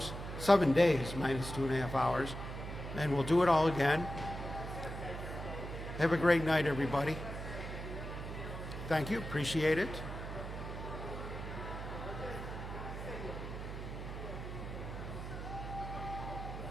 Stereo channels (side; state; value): right; noise; hum, 7 dB below the sound